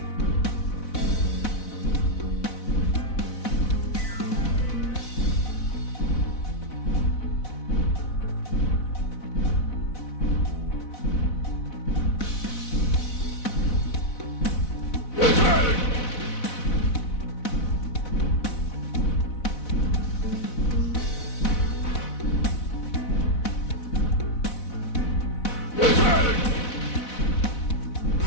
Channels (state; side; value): late; right; 4.0 ms